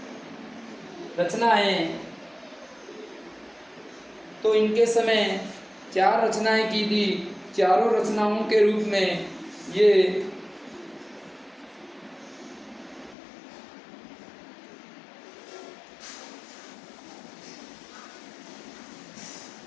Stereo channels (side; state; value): right; drops out; at 13.2 s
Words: रचनाएं, तो इनके समय 4 रचनाएं की थी। चारों रचनाओं के रूप में ये